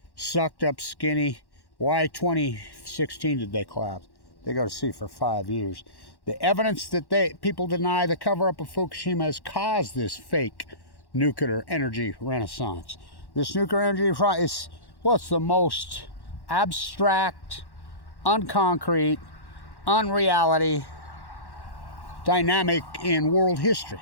sucked up skinny. Why 2016 did they collapse? They go to sea for 5 years. The evidence that people deny the cover-up of Fukushima has caused this fake nuclear energy renaissance. This nuclear energy is, well, it's the most abstract, unconcrete, unreality dynamic in world history.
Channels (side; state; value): right; late; 1.1 ms